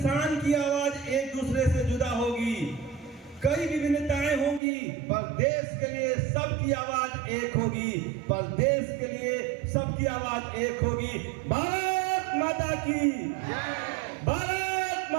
की आवाज एक दूसरे से जुदा होगी। कई विभिन्नताएं होंगी पर देश के लिए सबकी आवाज एक होगी। पर देश के लिए सबकी आवाज एक होगी। भारत माता की जय, भारत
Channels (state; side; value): drops out; left; at 4.6 s